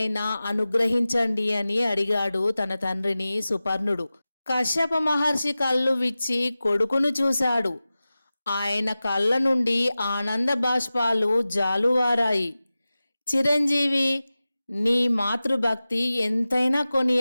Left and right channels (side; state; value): both; inverted; correlation -0.96